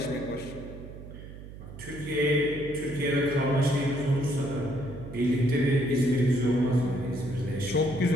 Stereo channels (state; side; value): noise; right; hum, 14 dB below the sound